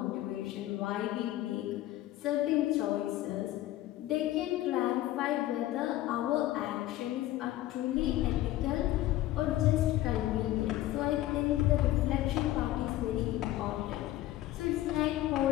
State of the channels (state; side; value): quieter; right; 15.0 dB